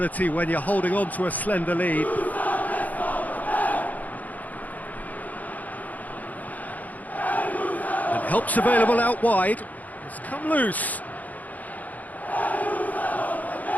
when you're holding on to a slender lead. And help's available out wide. It's come loose.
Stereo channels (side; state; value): right; late; 0.078 ms